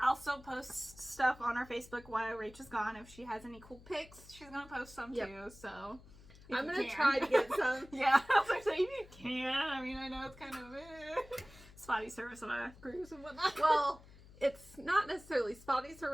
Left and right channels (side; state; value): left; noise; hum, 21 dB below the sound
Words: still post stuff on our Facebook while Rachel's gone. If she has any cool pics, she's gonna post some too. So I'm gonna try to get some. Yeah, I was like, so if you can. I mean, I know it's kind of spotty service on a cruise and whatnot. Well, it's not necessarily spotty